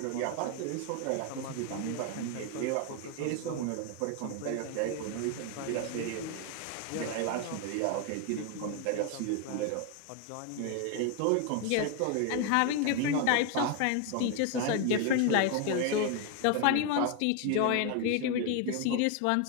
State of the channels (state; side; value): different; both; correlation 0.01